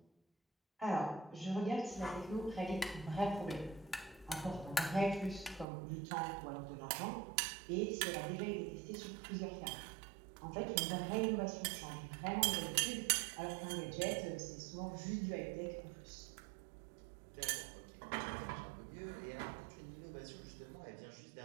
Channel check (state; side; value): drops out; left; at 5.7 s